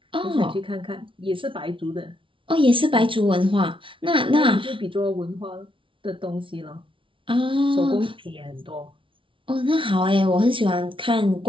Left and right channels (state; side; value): late; left; 0.25 ms